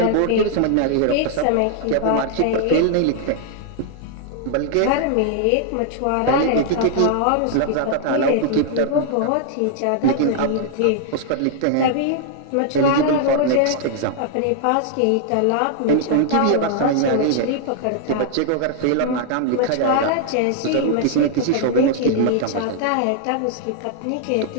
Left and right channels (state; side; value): different; both; correlation -0.01